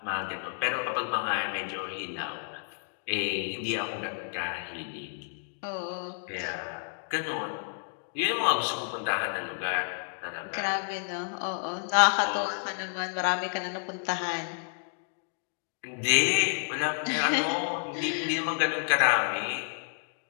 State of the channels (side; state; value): right; silent; digital silence